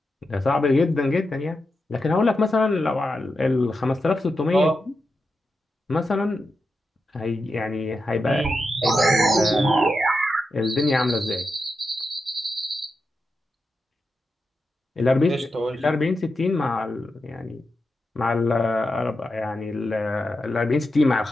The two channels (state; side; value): normal; both; correlation 0.88